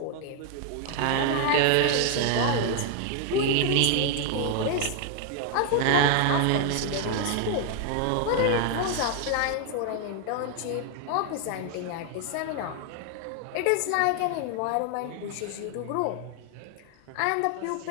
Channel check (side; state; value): both; different; correlation 0.00